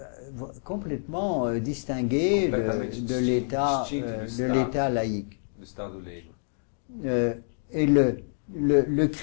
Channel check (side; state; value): right; silent; digital silence